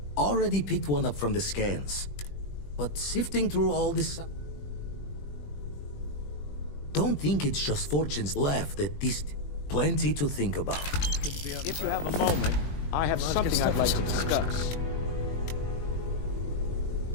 Already picked one up from the scans. But sifting through all this... Don't think it's just fortunes left at this... Plenty to think about. If you have a moment, I have something I'd like to discuss.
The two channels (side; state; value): right; late; 20 ms